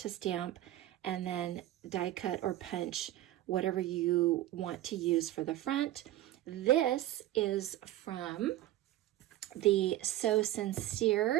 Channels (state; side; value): quieter; left; 14.3 dB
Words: stamp and then die cut or punch whatever you want to use for the front. This is from the So